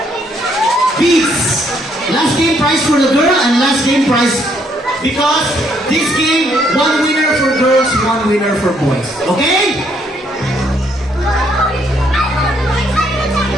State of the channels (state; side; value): normal; both; correlation 0.70